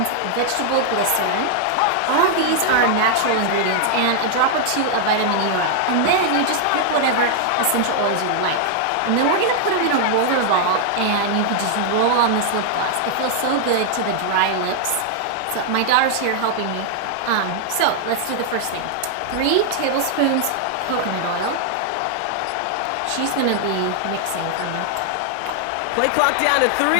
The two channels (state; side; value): different; both; correlation 0.00